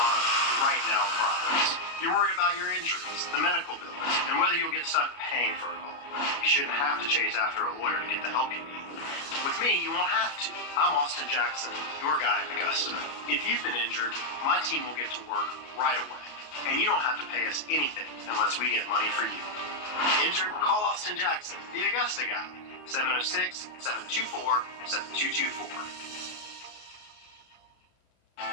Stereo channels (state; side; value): late; right; 33 ms